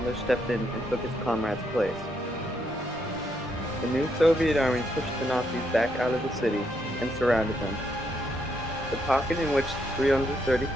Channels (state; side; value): normal; both; correlation 0.77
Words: stepped in and took his comrade's place. The new Soviet army pushed the Nazis back out of the city and surrounded them. The pocket in which